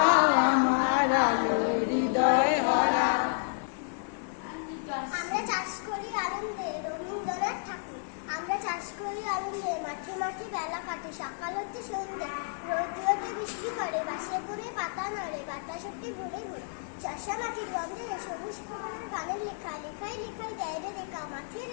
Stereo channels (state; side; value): silent; right; 57 dB below the other